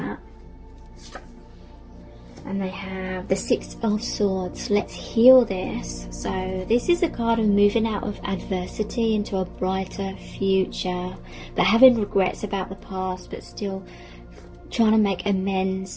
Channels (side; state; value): both; identical; correlation 1.00